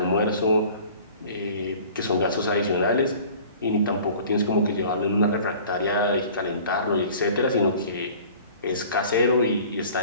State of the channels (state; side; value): inverted; both; correlation -0.46